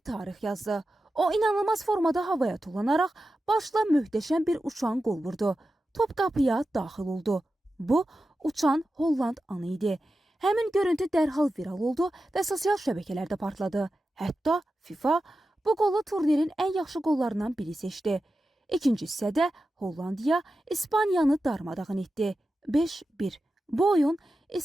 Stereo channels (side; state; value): both; normal; correlation 0.92